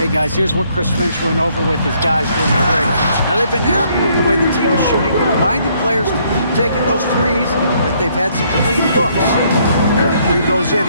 guys, here's what Chris Finch went over with his guys during the break. Now they've been happy with the way the team is shooting and reminded players to keep taking those threes, that they've had some clean looks. When the three goes in,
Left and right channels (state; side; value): inverted; both; correlation -0.68